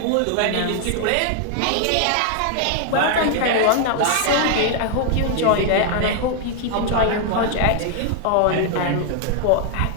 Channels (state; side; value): different; both; correlation 0.00